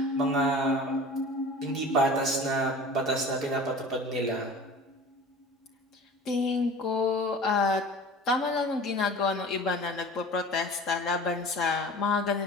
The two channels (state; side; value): normal; both; correlation 0.40